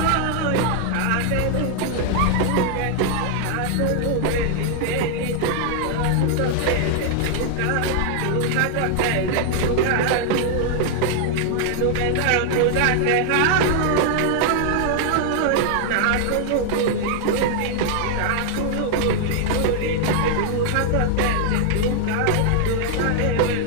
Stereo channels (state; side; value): different; both; correlation 0.00